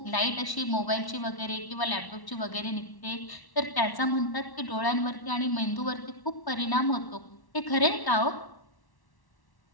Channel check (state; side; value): late; right; 1.1 ms